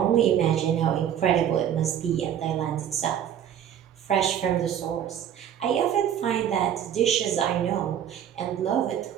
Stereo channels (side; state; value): left; quieter; 9.7 dB